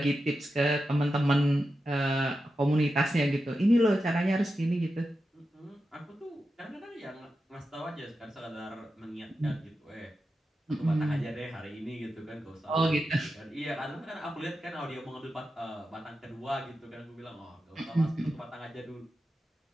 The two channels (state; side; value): normal; both; correlation 0.90